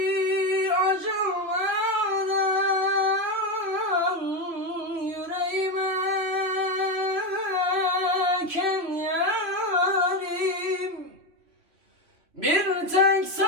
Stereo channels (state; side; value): late; left; 3.0 ms